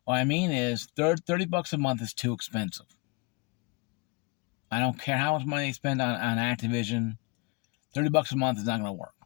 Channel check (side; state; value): right; quieter; 28.4 dB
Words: What I mean is $30 a month is too expensive. I don't care how much money they spend on Activision. $30 a month is not going to work.